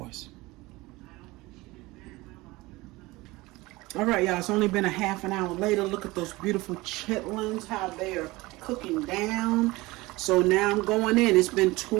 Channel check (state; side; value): quieter; left; 21.1 dB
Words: All right, y'all, it's only been a half an hour later. Look at those beautiful chitlins, how they are cooking down. So now I'm going in. It's been